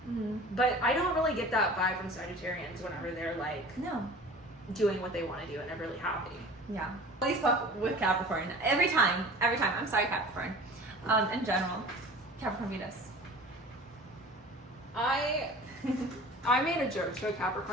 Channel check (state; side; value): normal; both; correlation 0.41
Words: But I don't really get that vibe from Sagittarians whenever they're like doing what they want to do and they're really happy. Yeah. At least with Capricorn. Every time. I'm sorry, Capricorn. In general. Capricorn Venus. I made a joke to a